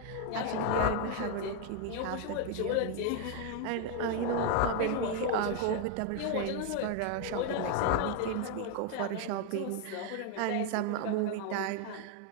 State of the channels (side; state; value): both; different; correlation 0.01